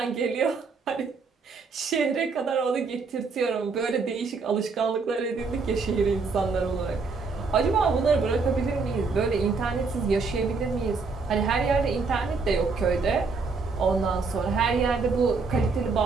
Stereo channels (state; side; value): quieter; left; 4.5 dB